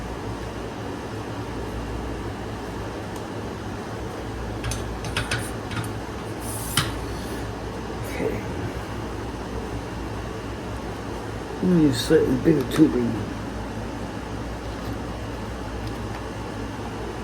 Okay. I'm going to use slightly bigger tubing.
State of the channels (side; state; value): both; identical; correlation 1.00